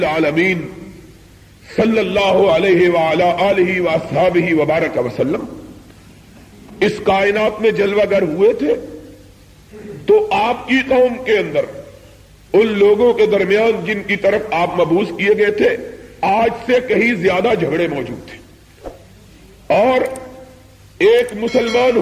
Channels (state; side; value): identical; both; correlation 1.00